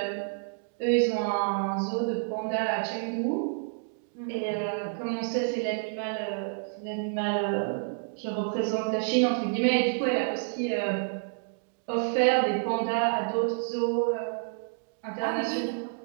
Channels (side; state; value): left; silent; digital silence